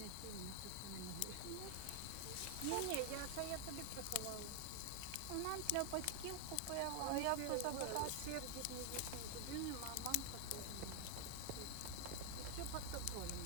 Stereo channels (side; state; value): both; different; correlation 0.00